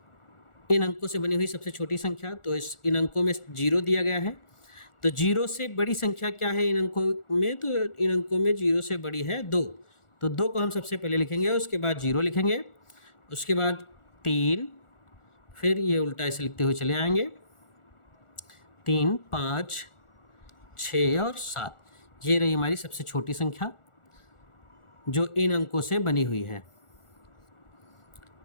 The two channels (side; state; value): right; late; 1.4 ms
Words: इन अंकों से बनी हुई सबसे छोटी संख्या, तो इन अंकों में 0 दिया गया है। तो 0 से बड़ी संख्या क्या है इन अंकों में? तो इन अंकों में 0 से बड़ी है 2। तो 2 को हम सबसे पहले लिखेंगे, उसके बाद 0 लिखेंगे, उसके बाद 3, फिर ये उल्टा ऐसे लिखते हुए चले आएंगे, 3, 5, 6 और 7। ये रही हमारी सबसे छोटी संख्या जो इन अंकों से बनी हुई है।